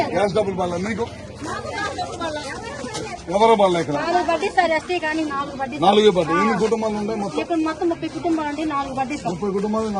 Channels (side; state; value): both; identical; correlation 1.00